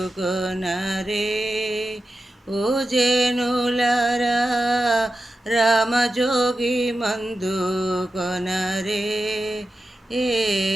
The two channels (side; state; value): both; normal; correlation 0.92